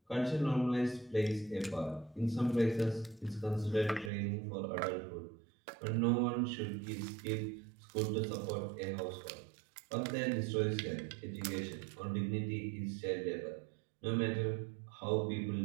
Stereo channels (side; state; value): left; drops out; at 4.1 s